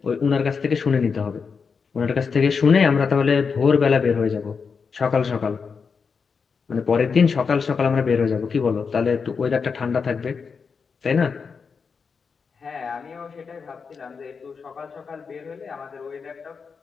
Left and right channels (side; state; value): right; quieter; 5.5 dB